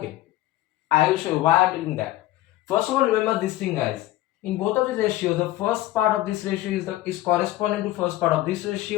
I will show you why I am doing that. First of all, remember this thing, guys. In both of these ratios, the first part of this ratio is corresponding to first part of this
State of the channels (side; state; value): right; quieter; 15.8 dB